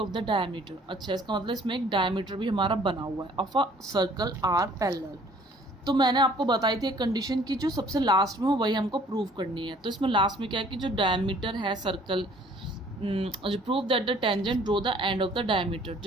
the diameter. अच्छा, इसका मतलब इसमें एक डायमीटर भी हमारा बना हुआ है of a circle are parallel. तो मैंने आपको बताई थी एक कंडीशन की जो सबसे लास्ट में हो वही हमको प्रूव करनी है। तो इसमें लास्ट में क्या है कि जो डायमीटर है सर्कल, जो prove that the tangent draw the end of the diameter,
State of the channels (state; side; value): normal; both; correlation 0.56